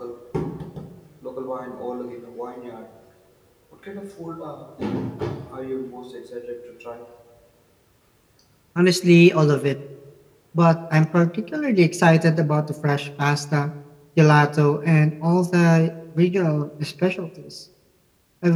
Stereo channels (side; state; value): both; identical; correlation 1.00